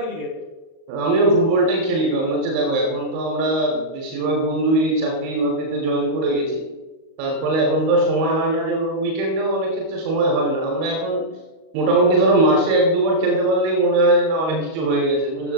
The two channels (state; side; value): late; left; 38 ms